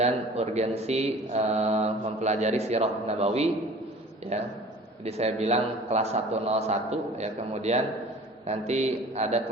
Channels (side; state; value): both; normal; correlation 0.45